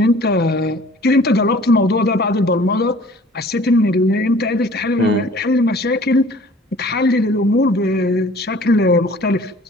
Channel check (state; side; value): normal; both; correlation 0.50